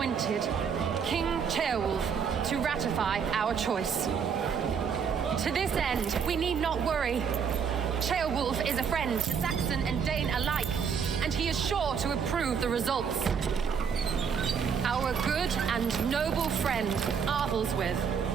King Ceolwulf to ratify our choice. To this end, we need not worry. Ceolwulf is a friend to Saxon and Dane alike, and he is sure to approve the results. Our good and noble friend, Arthelswith.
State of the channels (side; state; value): left; quieter; 6.7 dB